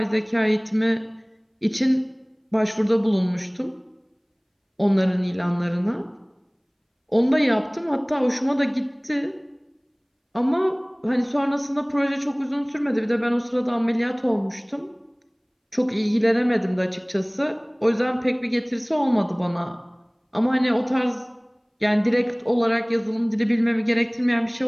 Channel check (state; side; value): identical; both; correlation 1.00